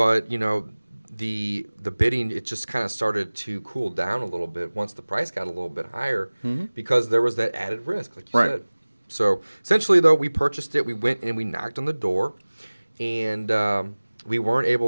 the bidding, it just kind of started to cool down a little bit once the price got a little bit higher because there was that added risk, like you said. So essentially, though, we purchased it. We went and we knocked on the door, and we weren't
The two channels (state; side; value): inverted; both; correlation -1.00